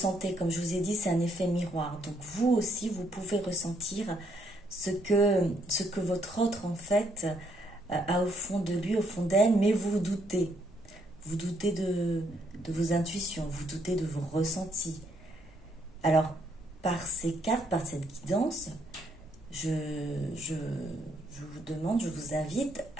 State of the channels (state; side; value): noise; left; rumble, 27 dB below the sound